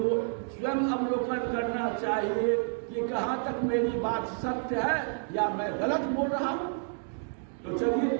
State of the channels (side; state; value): left; silent; 56 dB below the other